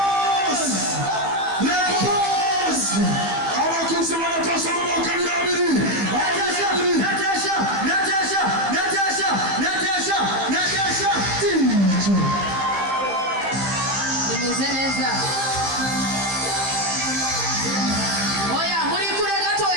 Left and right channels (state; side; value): late; left; 15 ms